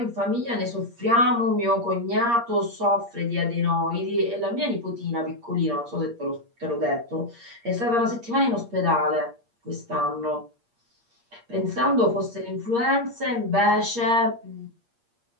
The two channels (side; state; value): left; late; 8.5 ms